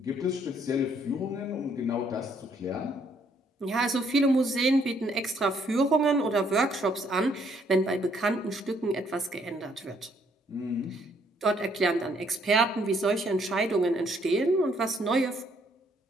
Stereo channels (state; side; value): normal; both; correlation 0.67